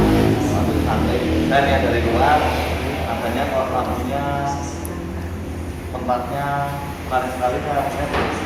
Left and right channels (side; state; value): both; identical; correlation 1.00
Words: waktu santai, dan yang dari luar, katanya kok lampunya, tempatnya menarik sekali,